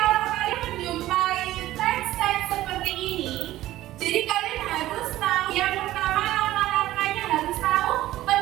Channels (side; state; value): left; quieter; 15.2 dB